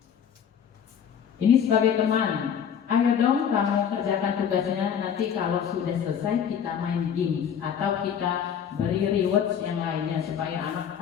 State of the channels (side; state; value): right; quieter; 8.1 dB